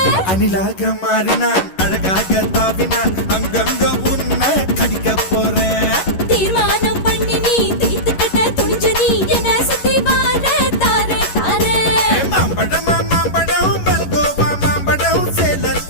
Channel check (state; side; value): late; right; 11 ms